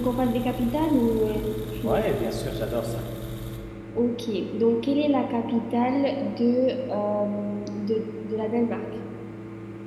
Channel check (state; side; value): identical; both; correlation 1.00